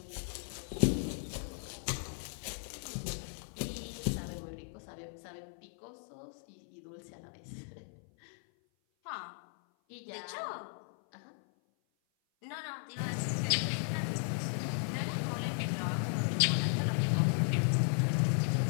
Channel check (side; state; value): right; silent; 54 dB below the other